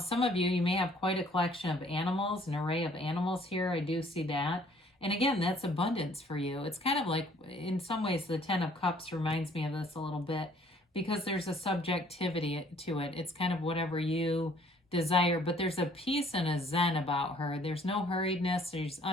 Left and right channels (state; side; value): normal; both; correlation 0.59